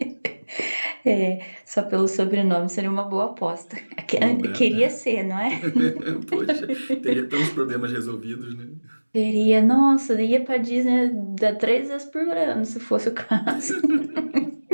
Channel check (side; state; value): both; inverted; correlation -1.00